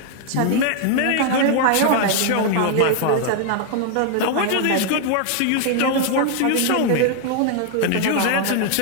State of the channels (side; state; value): both; different; correlation 0.00